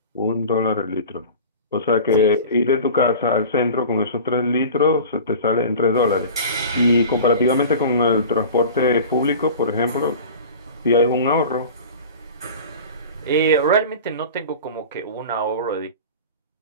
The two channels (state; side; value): inverted; both; correlation -0.37